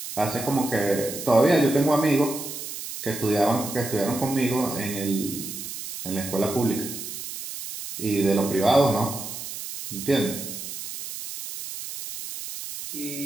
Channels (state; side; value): noise; right; hiss, 8 dB below the sound